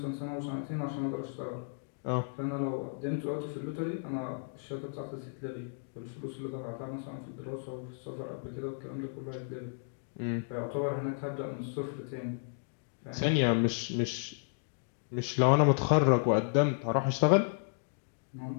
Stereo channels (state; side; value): silent; right; digital silence